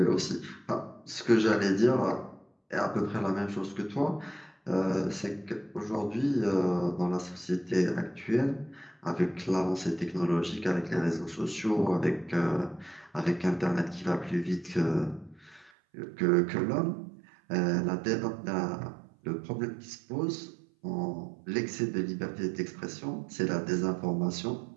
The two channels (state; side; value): drops out; left; at 15.7 s